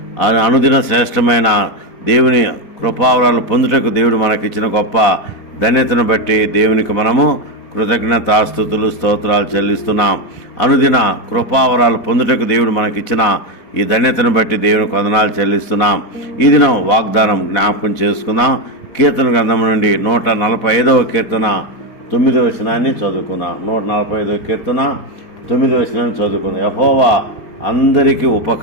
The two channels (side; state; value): right; late; 4.1 ms